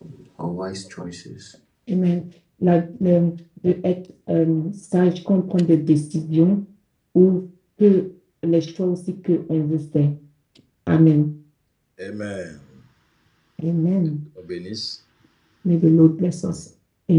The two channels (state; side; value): identical; both; correlation 1.00